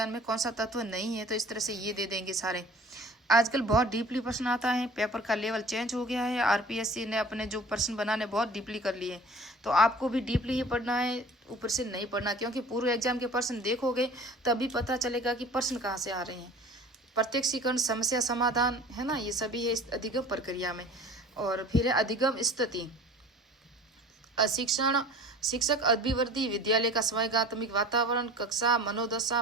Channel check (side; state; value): both; normal; correlation 0.45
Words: में कौन सा तत्व नहीं है, तो इस तरह से ये दे देंगे सारे। आजकल बहुत डीपली प्रश्न आता है, पेपर का लेवल चेंज हो गया है, आरपीएससी ने अपने जो प्रश्न बनाने बहुत डीपली कर लिए, तो आपको भी डीपली ही पढ़ना है, ऊपर से नहीं पढ़ना, क्योंकि पूर्व एग्जाम के प्रश्न देखोगे तभी पता चलेगा कि प्रश्न कहाँ से आ रहे हैं। प्रत्यक्षीकरण, समस्या समाधान, है ना, ये सभी है इस अधिगम प्रक्रिया में। और फिर है अधिगम स्थिति, शिक्षण, शिक्षक अभिवृद्धि, विद्यालय का स्वैगात्मिक वातावरण, कक्षा, मनोदशा,